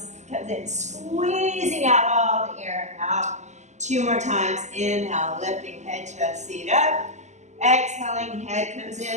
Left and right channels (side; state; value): left; late; 0.34 ms